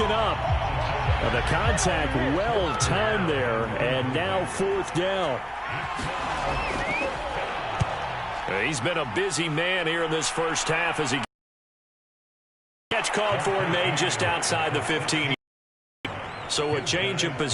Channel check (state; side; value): identical; both; correlation 1.00